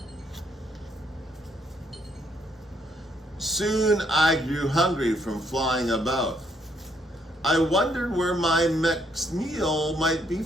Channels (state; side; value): normal; both; correlation 0.71